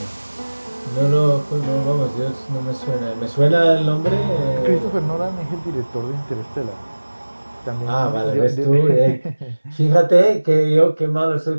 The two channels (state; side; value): inverted; both; correlation -1.00